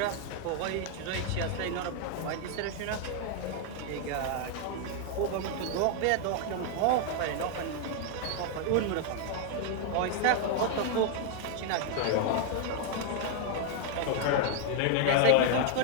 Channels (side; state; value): both; different; correlation 0.00